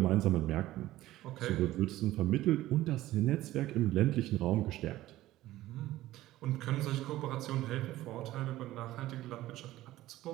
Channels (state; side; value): quieter; left; 15.7 dB